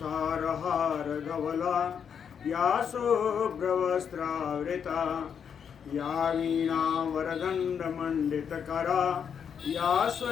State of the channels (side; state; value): right; quieter; 7.4 dB